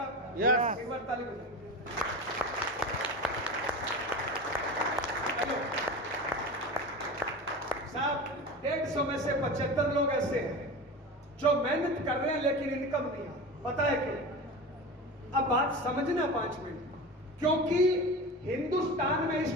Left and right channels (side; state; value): both; normal; correlation 0.29